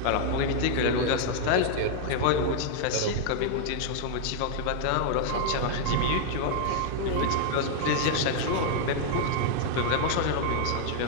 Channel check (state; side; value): different; both; correlation 0.00